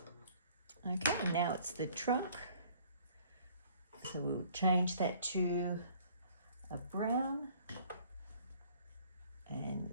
Okay, now it's the trunk. So we'll change that to a brown and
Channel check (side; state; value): both; inverted; correlation -0.56